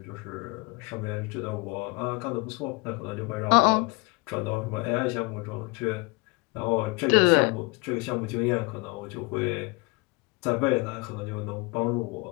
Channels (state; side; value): quieter; right; 27.9 dB